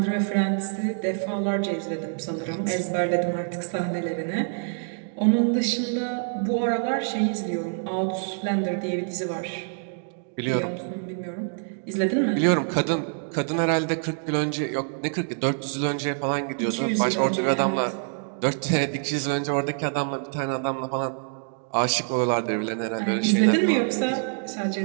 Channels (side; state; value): left; silent; 59 dB below the other